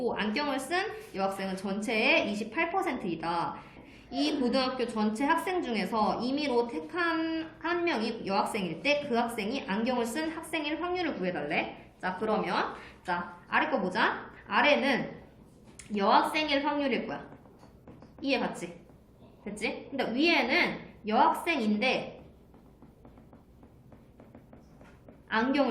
안경을 쓴 여학생은 전체의 28%이다. 이 고등학교 전체 학생 중에서 임의로 택한 한 명이 여학생일 때 그 학생이 안경을 쓴 학생일 확률을 구해달래. 자, 그러면 자, 아래 거 보자. 아래는 여학생일 확률일 거야. 이해 갔지? 됐지? 근데 위에는 여학생인데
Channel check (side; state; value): both; identical; correlation 1.00